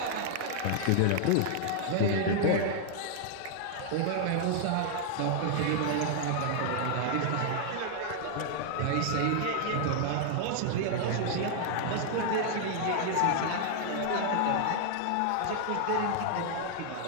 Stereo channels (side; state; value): both; different; correlation -0.01